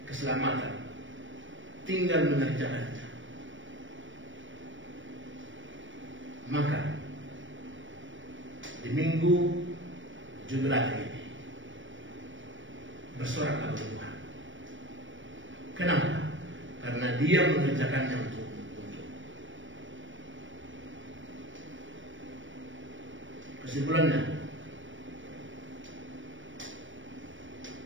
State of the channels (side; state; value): left; late; 0.56 ms